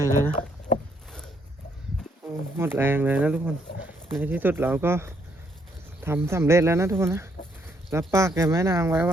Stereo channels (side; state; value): both; normal; correlation 0.71